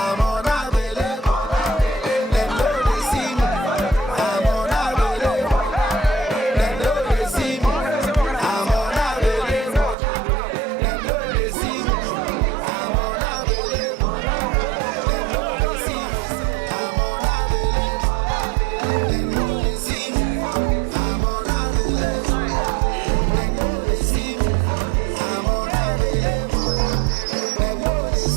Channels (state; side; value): drops out; left; at 10.0 s